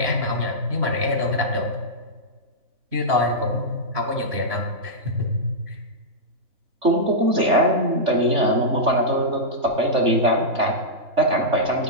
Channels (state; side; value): late; left; 3.4 ms